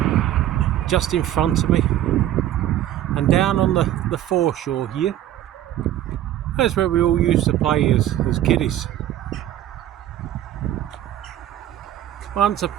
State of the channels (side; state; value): left; quieter; 12.5 dB